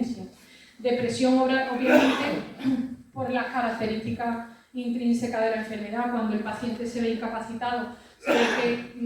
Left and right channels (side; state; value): both; identical; correlation 1.00